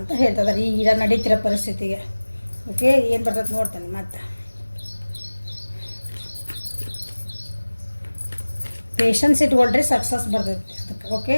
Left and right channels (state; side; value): inverted; both; correlation -1.00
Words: ಹೇಳ್ತಿದ್ದಾರೆ ಈಗ ನಡೀತಿರೋ ಪರಿಸ್ಥಿತಿಗೆ. ಓಕೆ, ಏನು ಬರ್ತದೆ ನೋಡ್ತೇನೆ ಮತ್ತೆ. ಪೇಷನ್ಸ್ ಇಟ್ಕೊಳ್ರಿ, ಸಕ್ಸಸ್ ಬರ್ತೈತಿ ಅದಕ್ಕೆ. ಓಕೆ,